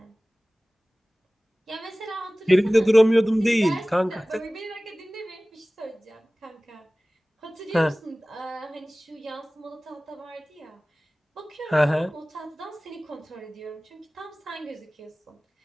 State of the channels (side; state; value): both; normal; correlation 0.98